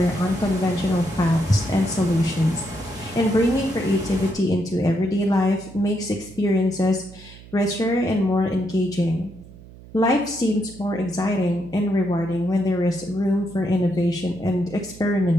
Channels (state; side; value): noise; right; hum, 19 dB below the sound